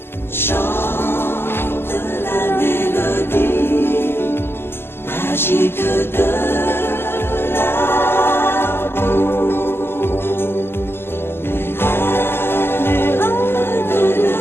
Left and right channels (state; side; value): late; right; 0.11 ms